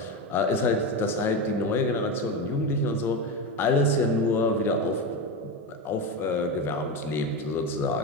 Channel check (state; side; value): normal; both; correlation 0.17